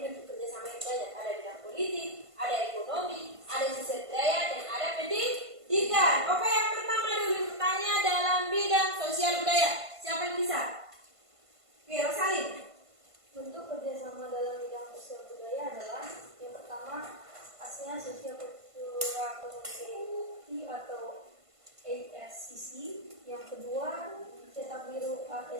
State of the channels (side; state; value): left; late; 1.5 ms